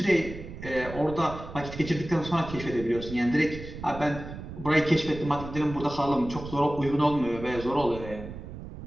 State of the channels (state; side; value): noise; right; rumble, 11 dB below the sound